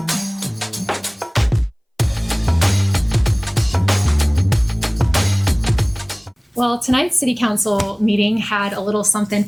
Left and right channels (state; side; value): identical; both; correlation 1.00